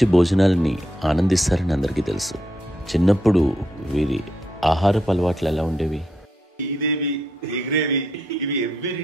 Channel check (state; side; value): normal; both; correlation 0.79